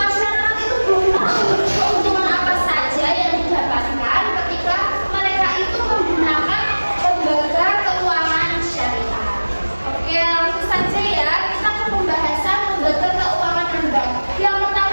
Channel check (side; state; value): both; inverted; correlation -1.00